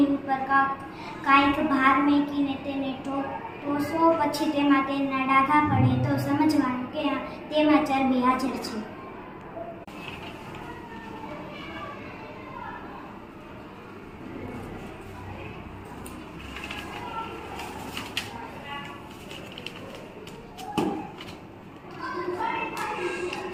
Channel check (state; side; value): identical; both; correlation 1.00